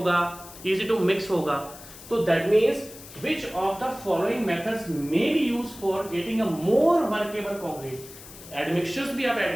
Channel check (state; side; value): noise; left; hiss, 17 dB below the sound